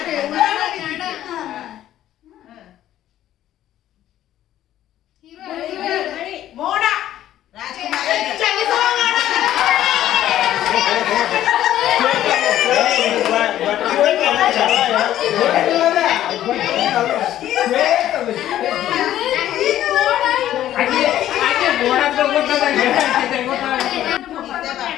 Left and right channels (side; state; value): right; quieter; 12.5 dB